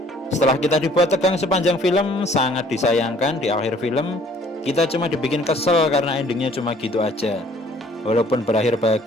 Setelah kita dibuat tegang sepanjang film, sangat disayangkan di akhir film kita cuma dibikin kesel karena endingnya cuma gitu aja. Walaupun berakhir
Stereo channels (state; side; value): normal; both; correlation 0.57